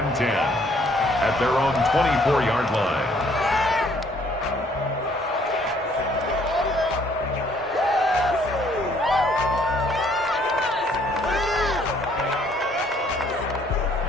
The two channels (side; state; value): both; normal; correlation 0.63